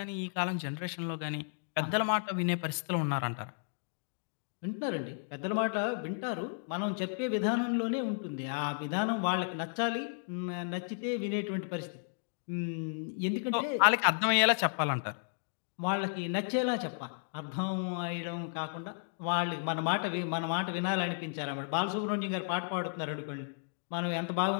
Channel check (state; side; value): silent; right; digital silence